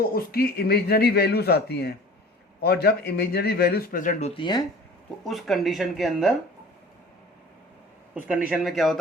उसकी इमेजिनरी वैल्यूज़ आती हैं, और जब इमेजिनरी वैल्यूज़ प्रेजेंट होती हैं तो उस कंडीशन के अंदर, उस कंडीशन में क्या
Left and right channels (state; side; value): normal; both; correlation 0.44